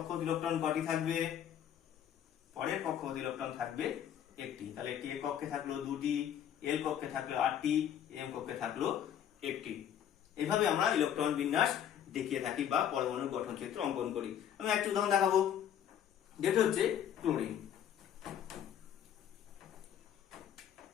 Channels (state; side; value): quieter; right; 9.7 dB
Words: ইলেকট্রন কটি থাকবে? পরের কক্ষপথ ইলেকট্রন থাকবে একটি। তাহলে একটি এ কক্ষে থাকলো 2টি, এল কক্ষে থাকলো 8টি, এম কক্ষে থাকলো একটি। এভাবে আমরা ইলেকট্রন বিন্যাস দেখিয়ে থাকি বা পরমাণুর গঠন চিত্র অঙ্কন করি। আমি একটা উদাহরণ দেখাবো, যেটা হচ্ছে ক্লোরিন।